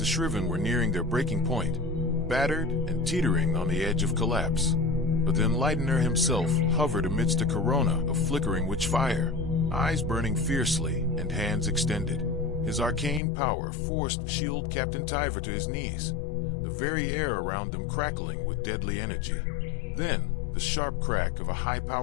Shriven were nearing their breaking point, battered and teetering on the edge of collapse. But the Enlightener himself hovered amidst a corona of flickering witch fire, eyes burning fiercely and hands extended. His arcane power forced Shield Captain Tyver to his knees, very air around them crackling with deadly energy. Then, the sharp crack of a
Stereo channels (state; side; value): drops out; right; at 13.2 s